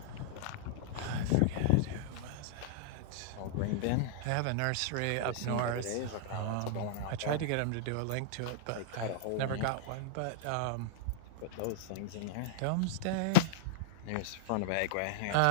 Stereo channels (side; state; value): both; different; correlation -0.01